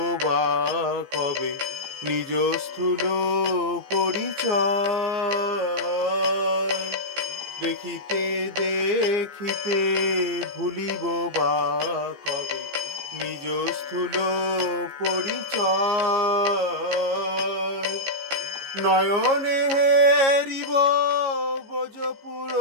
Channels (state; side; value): late; left; 15 ms